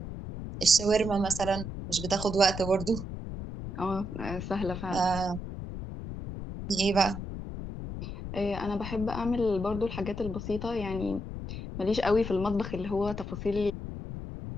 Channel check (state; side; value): noise; left; rumble, 7 dB below the sound